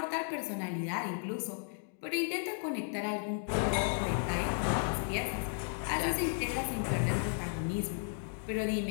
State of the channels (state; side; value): silent; right; 55 dB below the other